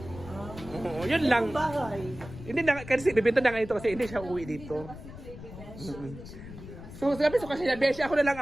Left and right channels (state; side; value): noise; left; rumble, 14 dB below the sound